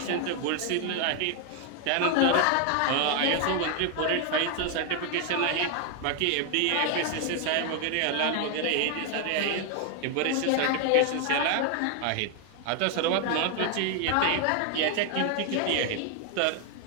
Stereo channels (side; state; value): both; different; correlation 0.00